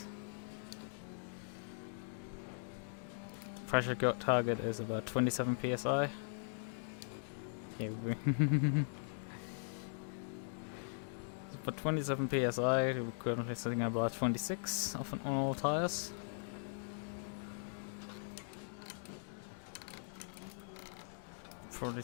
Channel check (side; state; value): right; silent; digital silence